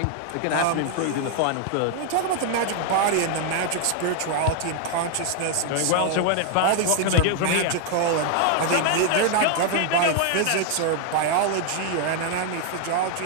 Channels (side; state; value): both; different; correlation 0.00